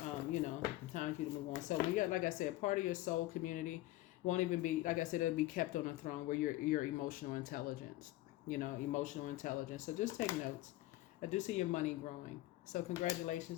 for you to move on. So you got, like I said, part of your soul community won't even be, like I said, it'll be kept on a throne where your emotional intelligence, emotional intelligence. So just take notes. I do see your money growing. So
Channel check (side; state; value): right; quieter; 17.0 dB